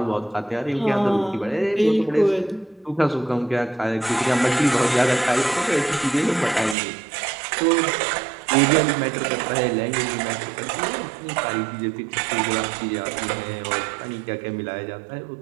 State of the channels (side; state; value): left; drops out; at 6.8 s